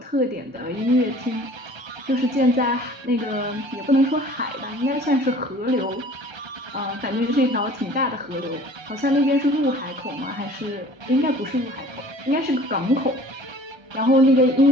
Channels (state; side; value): late; left; 1.3 ms